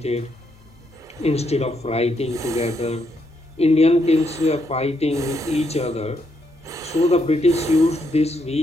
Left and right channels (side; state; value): both; normal; correlation 0.77